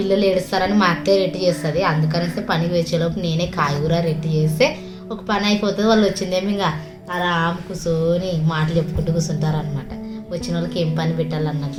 ఏడుస్తారని మా అత్తయ్య రెట్టి చేస్తుంది. అందుకనేసి పనికి వచ్చేలోపు నేనే కాయగూర రెట్టి చేస్తే ఒక పని అయిపోతుంది. వాళ్ళు వచ్చిందేమో ఇంకా ఆరామ్ కూర్చొని మాటలు చెప్పుకుంటూ కూర్చుంటారు అనమాట. వచ్చిన వాళ్ళకి ఏం పని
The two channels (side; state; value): both; identical; correlation 1.00